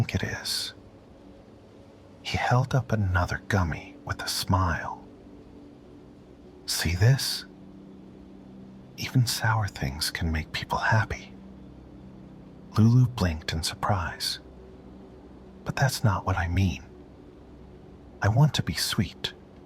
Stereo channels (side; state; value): both; identical; correlation 1.00